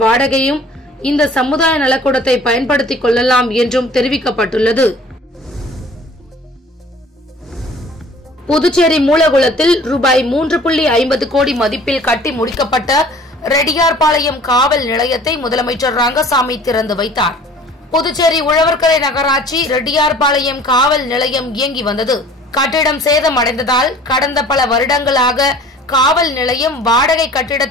வாடகையும் இந்த சமுதாய நலக்கூடத்தை பயன்படுத்திக் கொள்ளலாம் என்றும் தெரிவிக்கப்பட்டுள்ளது. புதுச்சேரி மூலகுளத்தில் ரூபாய் 3.50 கோடி மதிப்பில் கட்டி முடிக்கப்பட்ட ரெட்டியார்பாளையம் காவல் நிலையத்தை முதலமைச்சர் ரங்கசாமி திறந்து வைத்தார். புதுச்சேரி உழவர்கரை நகராட்சி ரெட்டியார்பாளையம் காவல் நிலையம் இயங்கி வந்தது. கட்டிடம் சேதமடைந்ததால் கடந்த பல வருடங்களாக காவல் நிலையம் வாடகை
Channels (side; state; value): both; normal; correlation 0.49